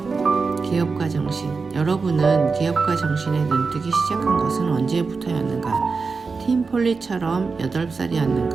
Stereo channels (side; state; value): left; quieter; 4.6 dB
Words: 기업가 정신. 여러분은 기업가 정신에 눈뜨기 시작한 것은 언제부터였는가? 팀 폴리처럼